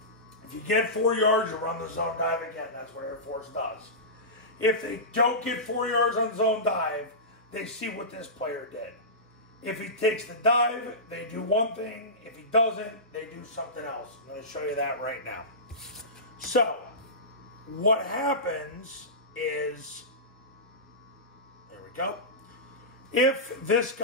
If you get 4 yards, you run the zone dive again. That's what Air Force does. If they don't get 4 yards on zone dive, they see what this player did. If he takes the dive, they do one thing. If he doesn't, they do something else. I'm going to show you that right now. So, what happens is, there we go. If this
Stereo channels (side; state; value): both; normal; correlation -0.19